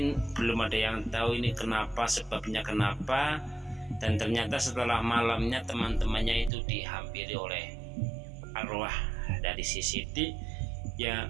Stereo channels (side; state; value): left; drops out; at 6.5 s